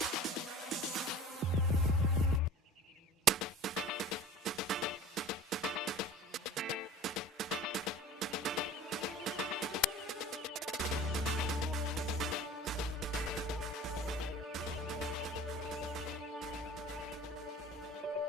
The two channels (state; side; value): normal; both; correlation 0.40